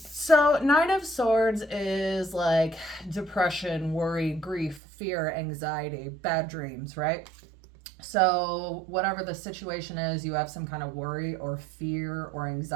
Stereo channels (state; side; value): drops out; left; at 4.8 s